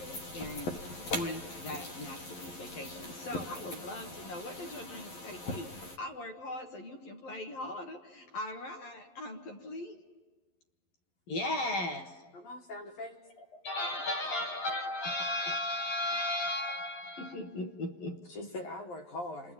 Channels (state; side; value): late; right; 11 ms